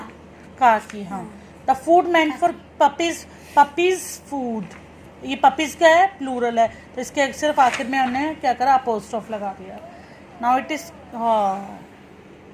का की। हाँ, the food meant for puppies, puppies food, ये पपीज का है प्लूरल है तो इसके सिर्फ आखिर में हमने क्या करा, अपोस्ट्रोफ लगा दिया। नाउ इट इज, हाँ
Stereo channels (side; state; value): both; identical; correlation 1.00